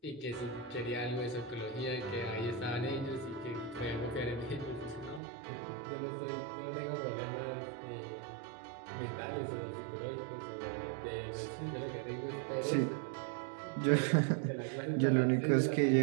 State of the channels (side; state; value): left; drops out; at 5.2 s